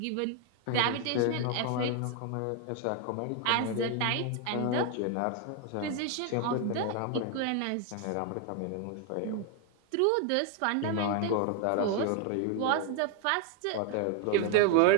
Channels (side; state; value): both; different; correlation 0.00